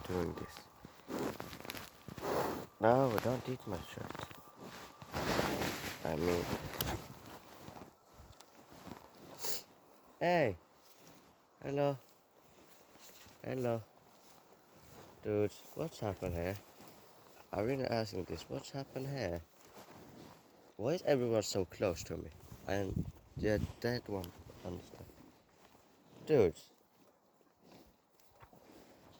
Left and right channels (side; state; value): both; identical; correlation 1.00